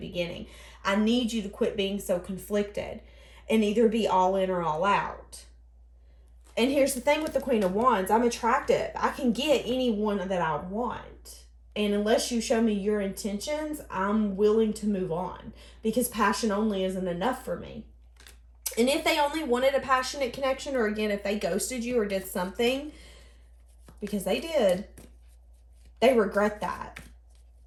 I need you to quit being so conflicted and either be all in or all out. And here's the thing with the Queen of Wands. I'm attractive. I can get anyone that I want. And unless you show me your intentions, I'm willing to move on because passion only isn't enough for me. And if they only wanted a passionate connection, or again, if they ghosted you or did something, because they did, they regret that.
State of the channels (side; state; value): both; identical; correlation 1.00